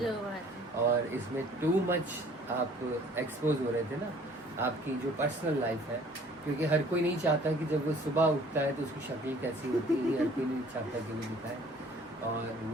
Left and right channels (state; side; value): normal; both; correlation 0.54